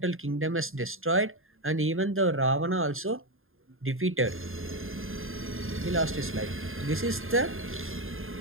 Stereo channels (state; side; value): late; left; 0.60 ms